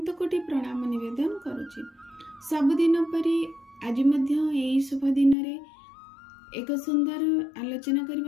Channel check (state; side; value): drops out; right; at 5.4 s